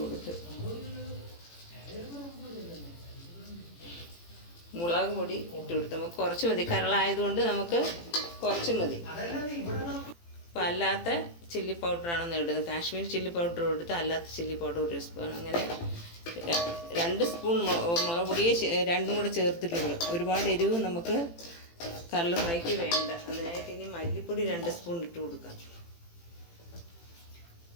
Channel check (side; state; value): right; late; 18 ms